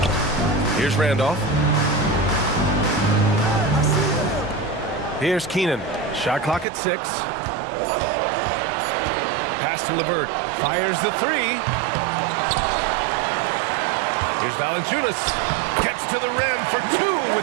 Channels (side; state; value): left; drops out; at 6.7 s